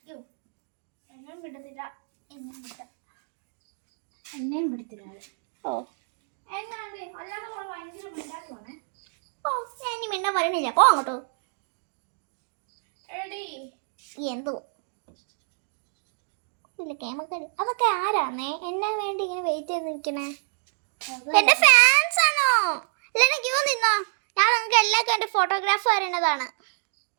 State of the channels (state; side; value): silent; left; digital silence